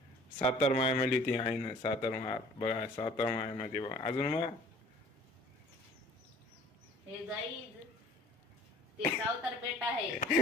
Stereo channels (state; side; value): normal; both; correlation 0.51